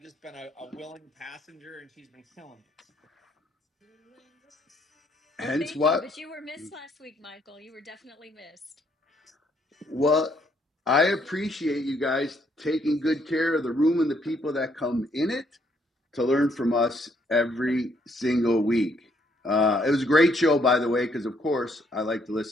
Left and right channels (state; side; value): normal; both; correlation 0.69